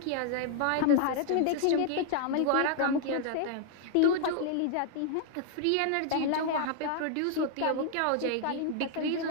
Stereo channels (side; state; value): both; different; correlation -0.01